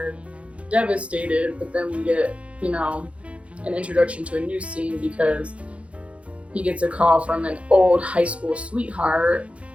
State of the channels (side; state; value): left; late; 0.062 ms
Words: devastated. But then we get, an introduction to a new scene because he gets a call from an old high school sweetheart,